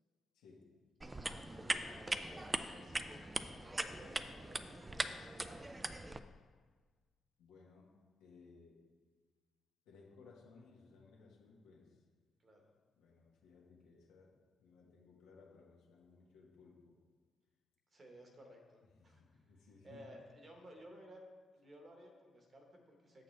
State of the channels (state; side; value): normal; both; correlation 0.95